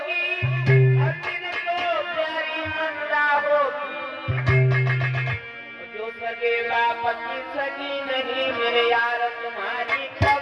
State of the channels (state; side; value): identical; both; correlation 1.00